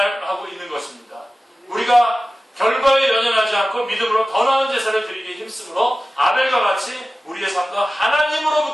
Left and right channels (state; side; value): normal; both; correlation 0.95